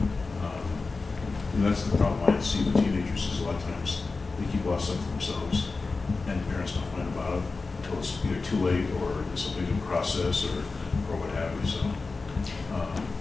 and that's the problem I see with teenagers is a lot of times they keep a lot of stuff to themselves, and the parents don't find about it until it's either too late or there's something in process or what have you. So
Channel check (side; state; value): right; quieter; 4.0 dB